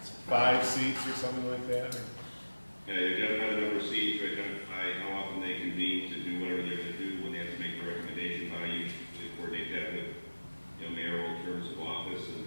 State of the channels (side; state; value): both; inverted; correlation -1.00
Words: 5 seats or something like that? or- Identify the number of seats, identify how often they convene to do whatever they're gonna do, when they have to make the recommendation, how you usually coordinate that with, mayoral terms of office, and